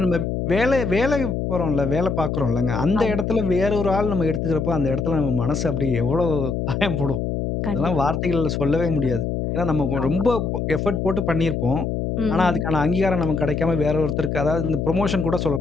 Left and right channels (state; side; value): noise; left; hum, 1 dB below the sound